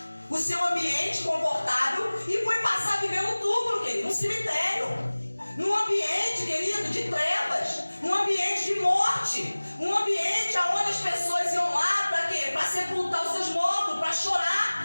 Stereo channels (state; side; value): inverted; both; correlation -1.00